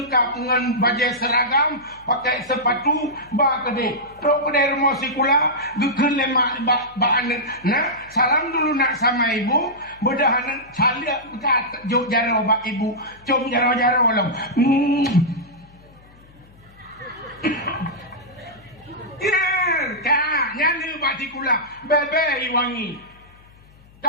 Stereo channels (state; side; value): noise; left; hum, 26 dB below the sound